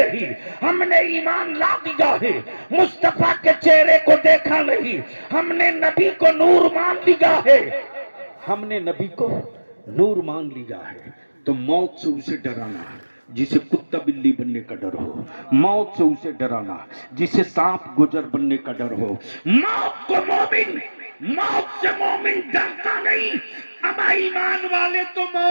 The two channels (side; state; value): both; inverted; correlation -1.00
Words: हमने ईमान ला दिया है। मुस्तफा के चेहरे को देखा नहीं, हमने नबी को नूर मान लिया है। हमने नबी को नूर मान लिया है। तो मौत से उसे डराना जिसे कुत्ता बिल्ली बनने का डर हो, मौत से उसे डराना जिसे सांप गुजर बनने का डर हो। मौत को मोमिन, मौत से मोमिन डरता नहीं। अमा ईमान वाले तो